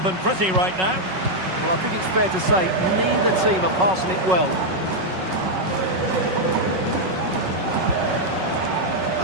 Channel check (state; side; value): late; left; 5.4 ms